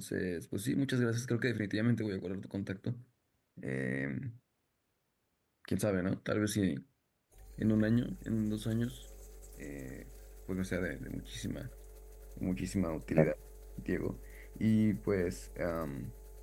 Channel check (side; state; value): both; identical; correlation 1.00